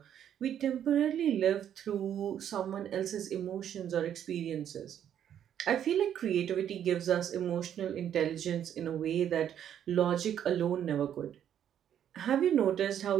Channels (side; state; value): left; quieter; 9.8 dB